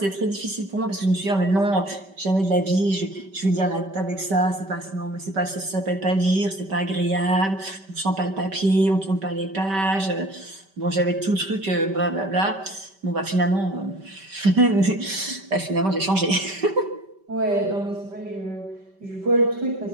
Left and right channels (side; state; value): left; late; 5.2 ms